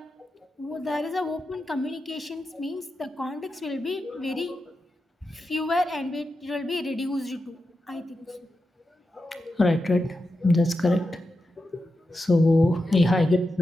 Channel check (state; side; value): normal; both; correlation 0.89